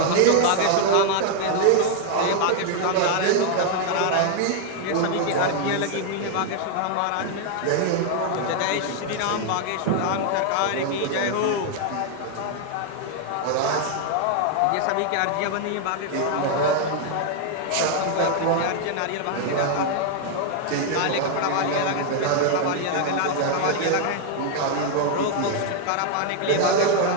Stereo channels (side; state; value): both; different; correlation 0.00